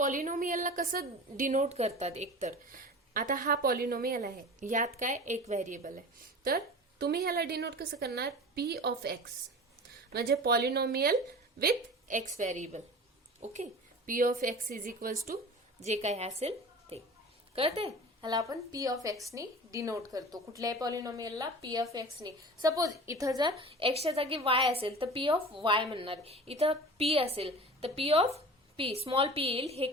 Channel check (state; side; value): normal; both; correlation 0.37